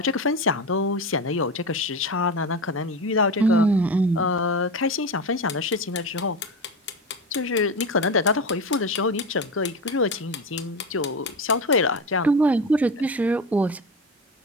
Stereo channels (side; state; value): both; normal; correlation 0.23